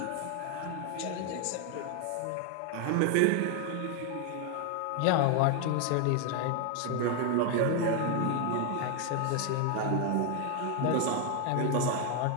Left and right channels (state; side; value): different; both; correlation 0.01